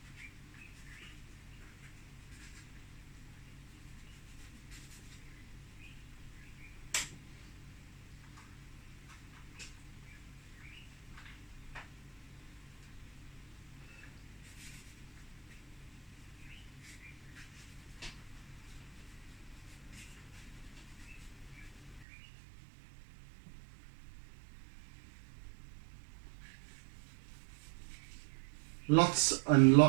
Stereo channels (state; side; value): drops out; left; at 22.1 s